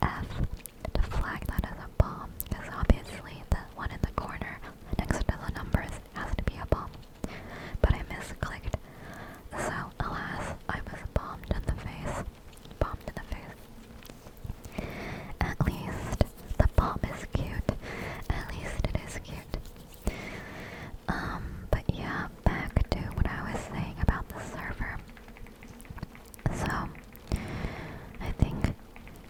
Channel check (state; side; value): identical; both; correlation 1.00